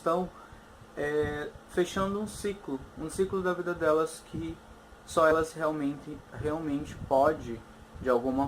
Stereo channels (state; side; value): identical; both; correlation 1.00